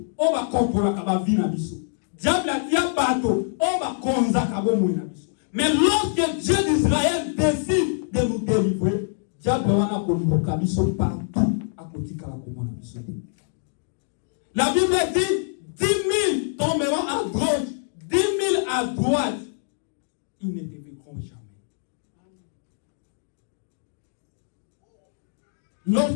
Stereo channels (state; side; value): silent; right; digital silence